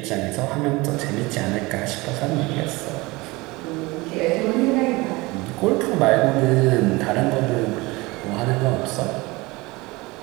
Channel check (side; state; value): left; quieter; 22.9 dB